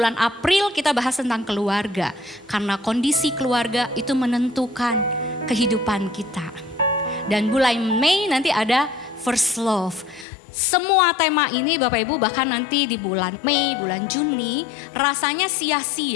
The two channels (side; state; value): right; drops out; at 10.2 s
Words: April kita bahas tentang keluarga. Karena kondisi keluarga itu menentukan kehidupan kita. Dan bulan Mei nanti ada First Love. Semua tema ini Bapak Ibu bahkan nanti di bulan Mei, bulan Juni rasanya